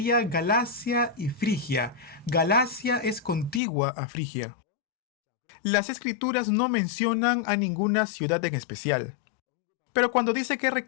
Galacia y Frigia. Galacia es contigua a Frigia. Las escrituras no mencionan a ninguna ciudad en especial. Pero cuando dice que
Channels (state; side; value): drops out; right; at 3.6 s